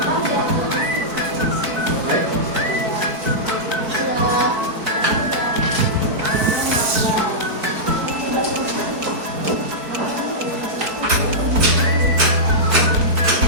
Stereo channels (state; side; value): late; left; 4.6 ms